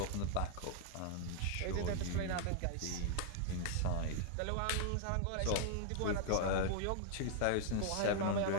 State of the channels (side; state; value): both; different; correlation 0.00